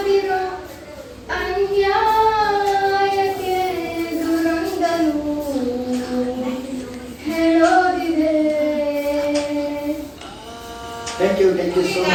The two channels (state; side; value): identical; both; correlation 1.00